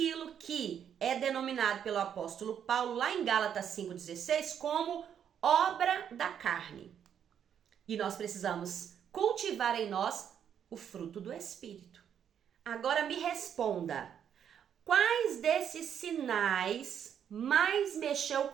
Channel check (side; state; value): left; quieter; 8.7 dB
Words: que é denominado pelo apóstolo Paulo lá em Gálatas 5,16 como obra da carne. E nós precisamos cultivar em nós o fruto do Espírito. Agora me responda, quais desses sinais mais mexeu